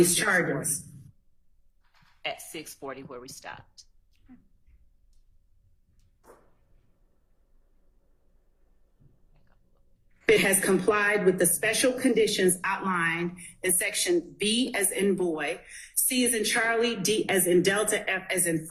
6:40 charges. At 6:40 where we stopped. It has complied with the special conditions outlined in section B as in boy, C as in Charlie, D as in Delta, F as in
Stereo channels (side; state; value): both; identical; correlation 1.00